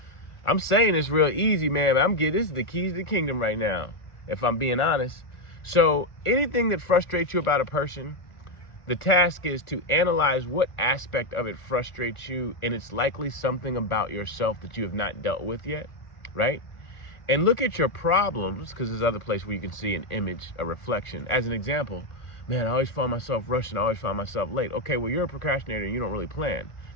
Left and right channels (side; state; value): right; late; 1.4 ms